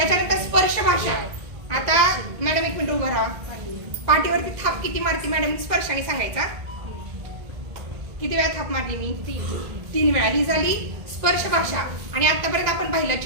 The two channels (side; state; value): left; late; 1.9 ms